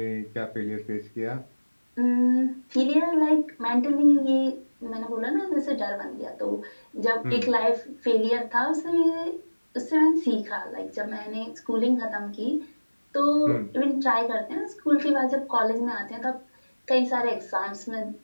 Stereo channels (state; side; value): inverted; both; correlation -1.00